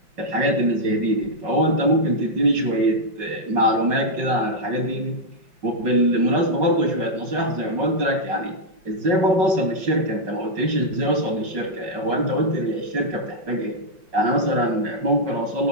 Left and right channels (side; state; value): left; late; 5.3 ms